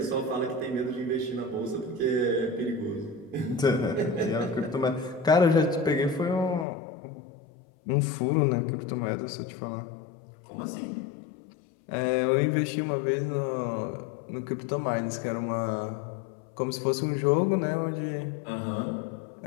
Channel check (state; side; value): drops out; right; at 6.7 s